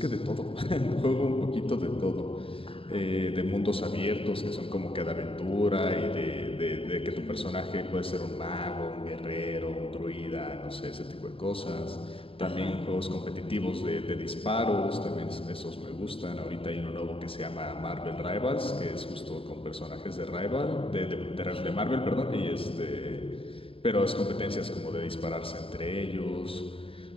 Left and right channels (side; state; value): right; late; 0.27 ms